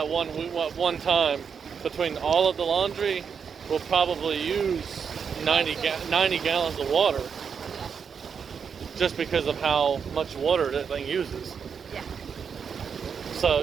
one time between all of the laundry, we'll probably use 90 gallons of water, Yeah. just because of how much water that thing uses. Yeah. So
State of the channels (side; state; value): left; quieter; 6.6 dB